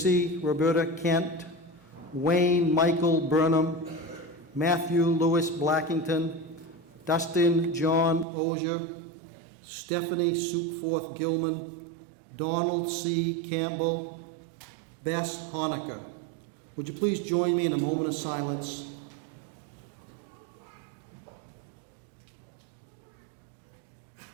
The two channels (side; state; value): left; drops out; at 8.2 s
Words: Roberta Kent, Wayne Michael Burnham, Matthew Lewis Blackington, Dustin John Ozier, Stephanie Sukeforth Gilman, Donald C. Campbell, Bess Honecker. Would you please join me in a moment of silence?